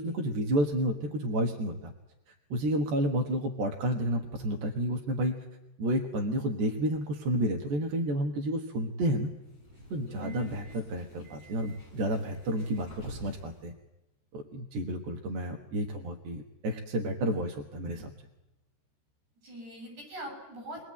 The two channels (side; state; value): left; late; 13 ms